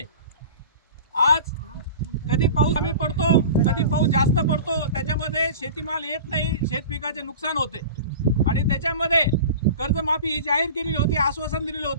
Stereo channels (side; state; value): both; inverted; correlation -0.36